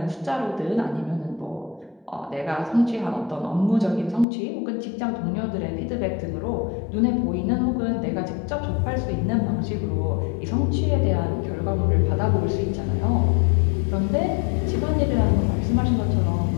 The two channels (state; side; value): drops out; right; at 4.2 s